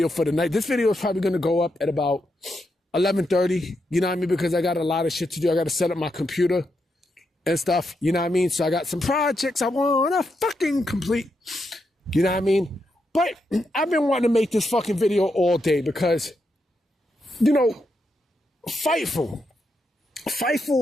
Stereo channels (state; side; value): normal; both; correlation 0.83